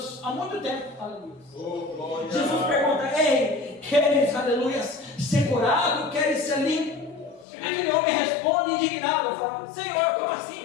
há muito tempo. Aleluia. Jesus pergunta: ei, queres, aleluia, ser curado? Queres ser limpo? Aquele homem responde indignado, fala: Senhor, como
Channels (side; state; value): right; drops out; at 7.5 s